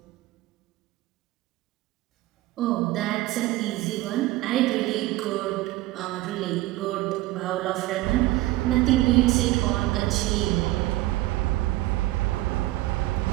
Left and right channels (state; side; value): quieter; left; 17.6 dB